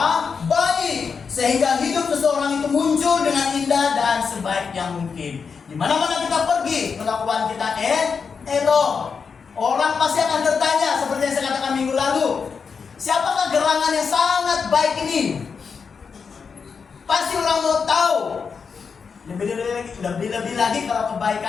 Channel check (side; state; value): right; quieter; 5.7 dB